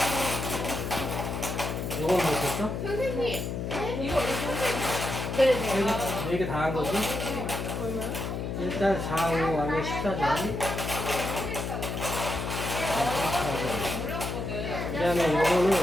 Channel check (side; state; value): left; noise; hum, 3 dB below the sound